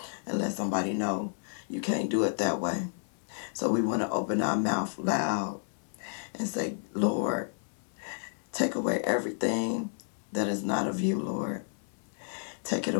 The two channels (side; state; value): right; silent; 57 dB below the other